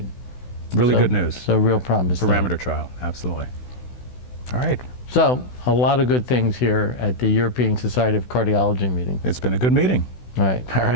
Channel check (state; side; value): late; right; 16 ms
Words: Really good news. So real promise. Parameter trial, absolutely. All right. So a lot of good things here at the European Society of Cardiology meeting. It's been a good meeting. Right. All